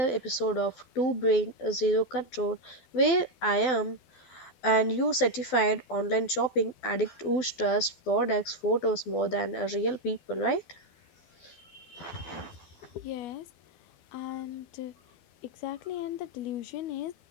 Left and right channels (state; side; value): late; right; 12 ms